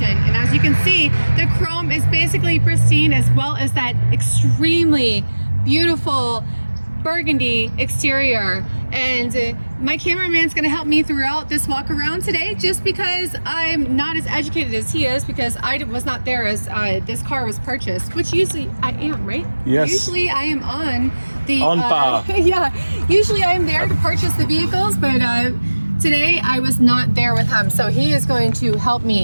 and as you can see, the chrome is basically pristine, as well as that extremely beautiful burgundy exterior. And my cameraman's gonna help me throughout this walk around today, just because I'm not as educated as he is, because I was not there as this car was purchased, which usually I am, right? Yes. Usually I am on the bar. yeah, usually I am there to purchase the vehicles, but today I was not there with him, so he is going to help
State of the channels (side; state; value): both; inverted; correlation -1.00